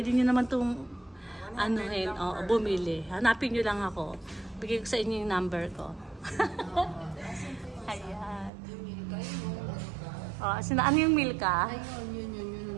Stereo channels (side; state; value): left; drops out; at 8.5 s